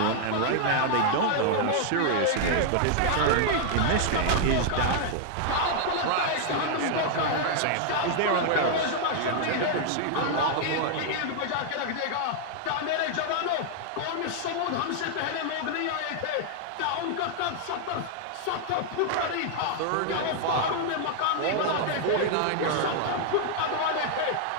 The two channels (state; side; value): different; both; correlation 0.00